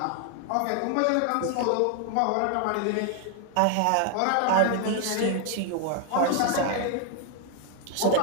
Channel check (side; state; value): both; different; correlation 0.00